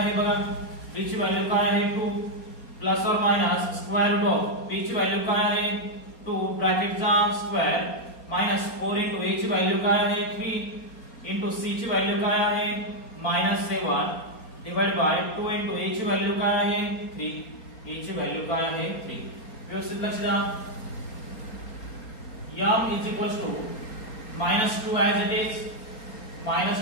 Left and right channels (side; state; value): right; late; 4.3 ms